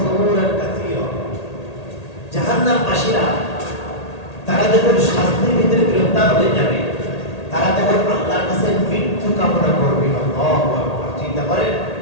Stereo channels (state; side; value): late; right; 1.8 ms